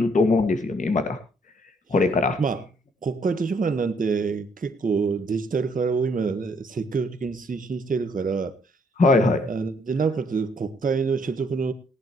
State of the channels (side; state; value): both; normal; correlation 0.68